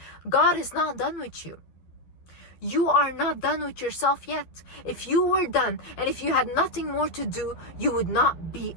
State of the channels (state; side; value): late; right; 12 ms